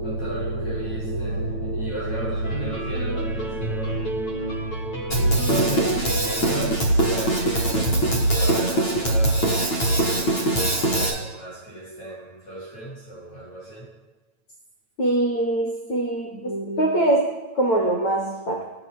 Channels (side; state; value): right; late; 9.0 ms